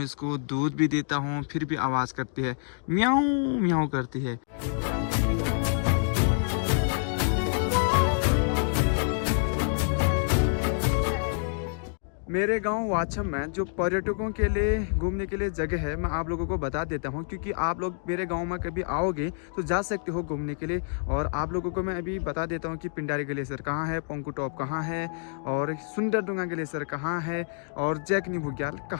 इसको, दूध भी देता हूँ, फिर भी आवाज़ करती है, म्याऊं म्याऊं करती है। मेरे गांव वाछम में जो पर्यटकों के लिए घूमने के लिए जगह है, मैं आप लोगों को बता देता हूं, क्योंकि आप लोग मेरे गांव में कभी आओगे तो जा सकते हो घूमने के लिए। और आप लोगों को मैं अभी बता देता हूं कि पिंडारी ग्लेशियर कहां है, पंकु टॉप कहां है, और सुंदरडुंगा ग्लेशियर कहां है, और जैकनी बुग्याल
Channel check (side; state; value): right; silent; digital silence